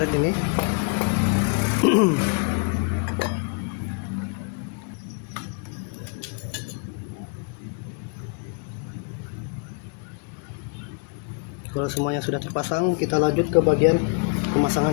ini. Kalau semuanya sudah terpasang, kita lanjut ke bagian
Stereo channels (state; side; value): quieter; right; 33.6 dB